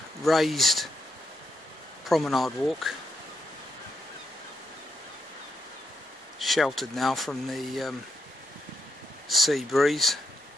raised promenade walk, sheltered now from the sea breeze.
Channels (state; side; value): normal; both; correlation 0.81